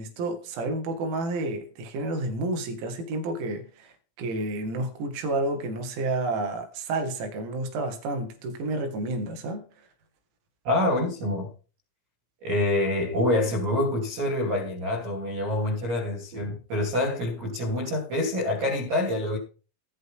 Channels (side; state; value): left; late; 17 ms